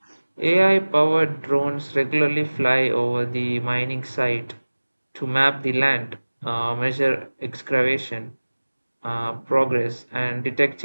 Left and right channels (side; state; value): both; inverted; correlation -1.00